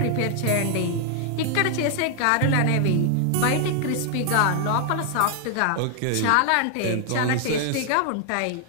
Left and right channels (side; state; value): both; different; correlation 0.00